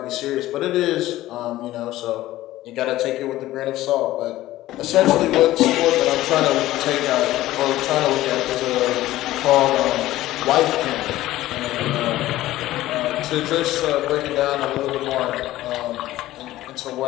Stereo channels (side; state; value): right; quieter; 15.6 dB